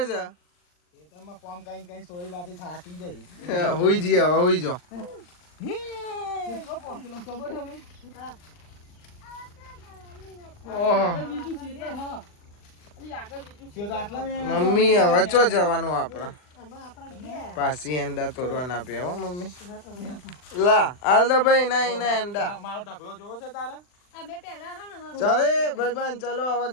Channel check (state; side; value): late; right; 39 ms